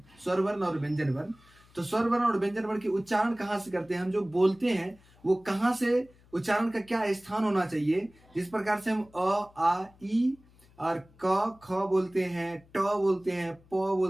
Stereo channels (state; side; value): noise; left; hum, 28 dB below the sound